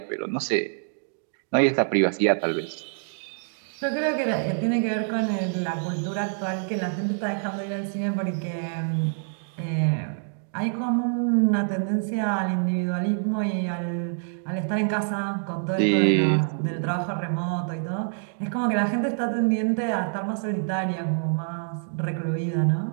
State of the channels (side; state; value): left; silent; digital silence